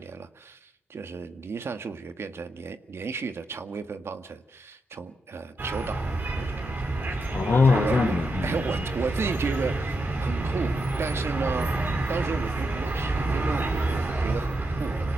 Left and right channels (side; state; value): both; normal; correlation 0.84